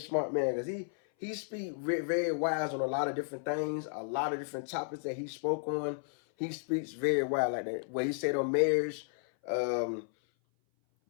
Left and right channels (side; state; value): right; silent; 56 dB below the other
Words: man, because he speaks very wise on a lot of different things, a lot of different topics that he spoke on. He speaks very wise like that. What he said on marriage,